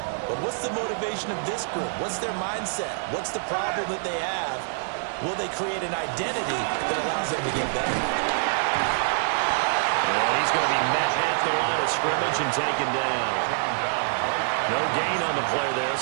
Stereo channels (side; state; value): left; silent; digital silence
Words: But what's the motivation of this group? What's their mindset? What's the problem that they have? Will they create an identity that allows them to get better? And he's going to be met at the line of scrimmage and taken down. No gain on the play there,